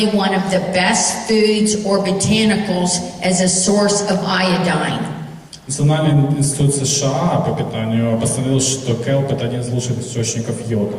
one of the best foods or botanicals as a source of iodine. Национальный институт США по питанию постановил, что келп – это один из лучших источников йода.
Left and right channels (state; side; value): identical; both; correlation 1.00